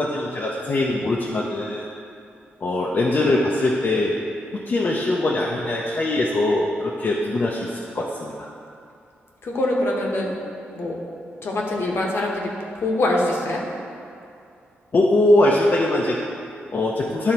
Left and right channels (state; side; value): normal; both; correlation 0.81